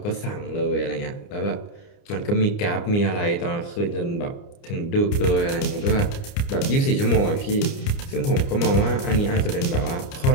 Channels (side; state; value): right; late; 29 ms